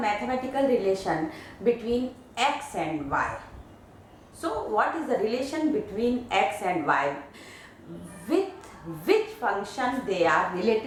relation between x and y. So what is the relation between x and y? With which function they are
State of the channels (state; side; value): identical; both; correlation 1.00